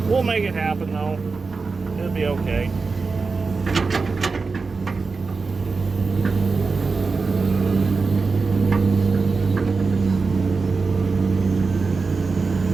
we'll make it happen though. It'll be okay.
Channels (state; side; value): quieter; left; 4.4 dB